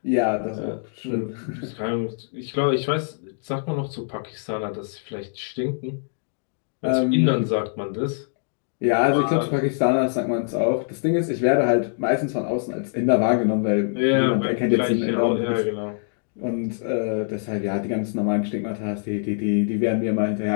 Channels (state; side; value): silent; right; digital silence